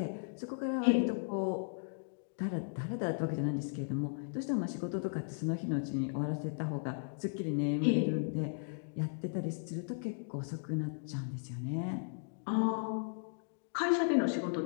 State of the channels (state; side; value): silent; right; digital silence